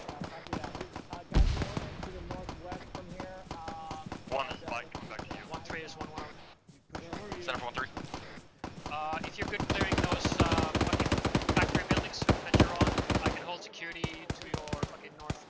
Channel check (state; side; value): identical; both; correlation 1.00